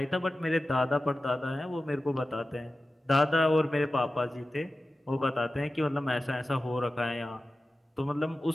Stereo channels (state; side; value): normal; both; correlation 0.94